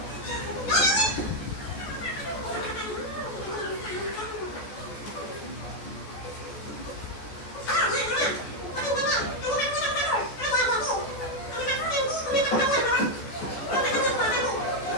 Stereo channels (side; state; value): right; late; 14 ms